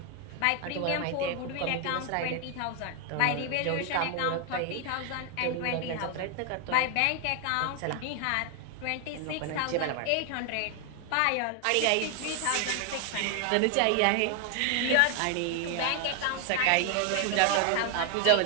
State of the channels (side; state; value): both; different; correlation 0.01